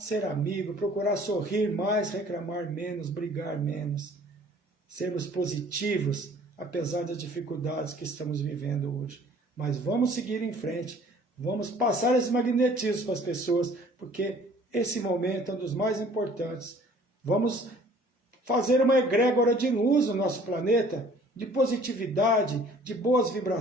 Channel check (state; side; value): normal; both; correlation 0.53